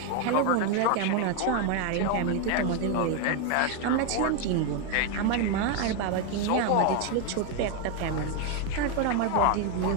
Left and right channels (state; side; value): different; both; correlation 0.01